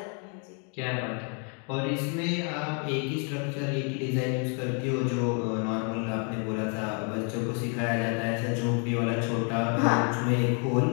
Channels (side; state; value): right; quieter; 38.9 dB